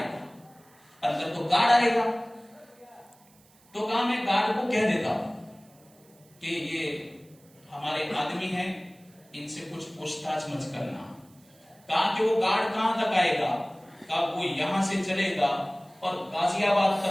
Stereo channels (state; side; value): noise; right; hiss, 29 dB below the sound